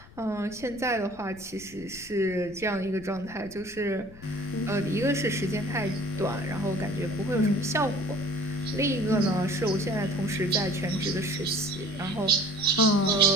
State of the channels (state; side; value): noise; left; rumble, 20 dB below the sound